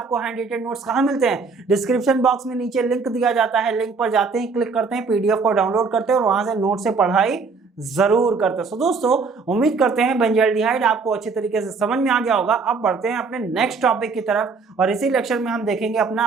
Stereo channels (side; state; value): left; quieter; 4.6 dB